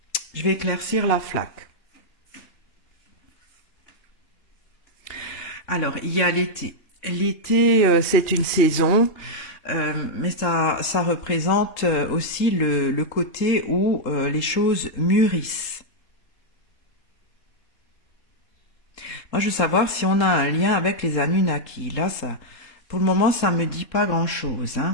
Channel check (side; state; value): right; late; 3.8 ms